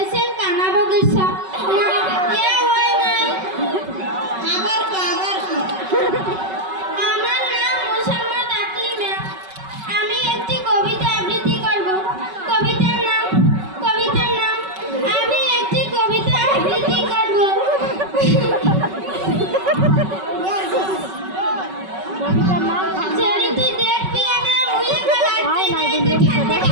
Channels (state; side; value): late; left; 5.3 ms